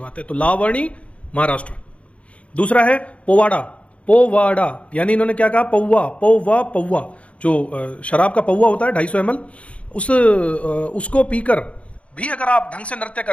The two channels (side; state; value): right; late; 0.063 ms